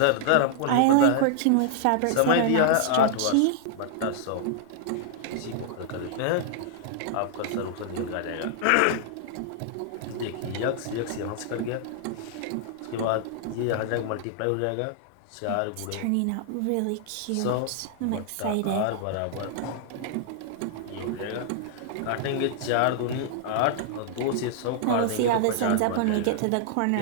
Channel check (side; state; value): both; different; correlation -0.01